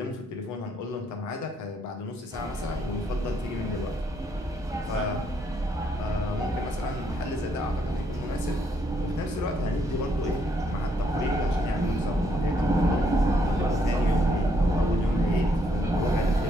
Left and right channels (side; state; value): both; normal; correlation 0.72